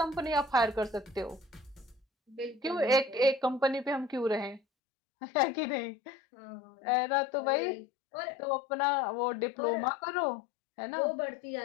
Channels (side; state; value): right; drops out; at 4.6 s